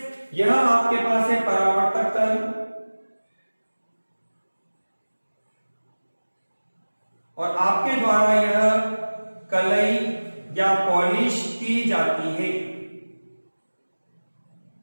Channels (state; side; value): inverted; both; correlation -1.00